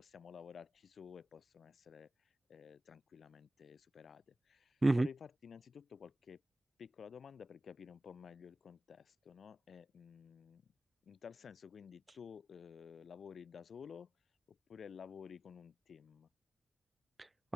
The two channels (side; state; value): both; normal; correlation 0.96